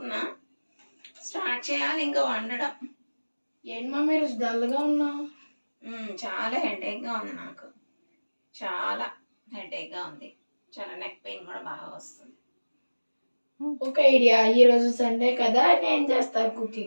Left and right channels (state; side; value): inverted; both; correlation -1.00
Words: స్టార్ట్ చేయాలి ఇంకా వండడం. ఏంటి మా మీరు డల్గా ఉన్నావు? చాలా హెడేక్గా ఉంది నాకు. చాలా హెడేక్గా ఉంది. చాలా నెక్ పెయిన్ కూడా బాగా వస్తుంది. ఒక ఐడియా, ఈరోజు సండే కదా, నేను చేస్తా